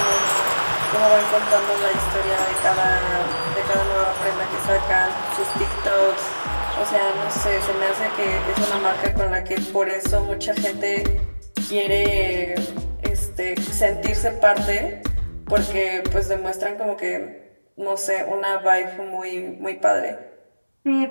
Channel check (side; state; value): both; inverted; correlation -1.00